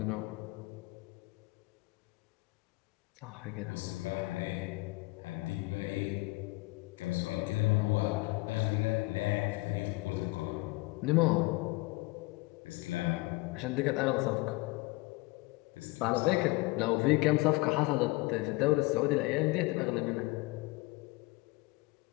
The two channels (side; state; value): right; quieter; 23.5 dB